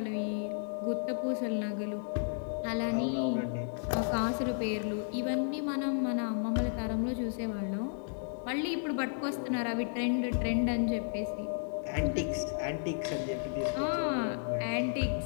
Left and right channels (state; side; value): silent; right; digital silence